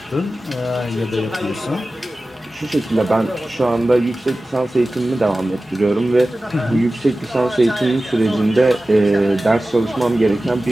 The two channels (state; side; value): normal; both; correlation 0.96